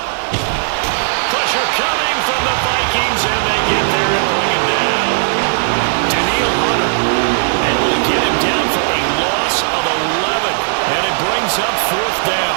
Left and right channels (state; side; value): silent; left; 64 dB below the other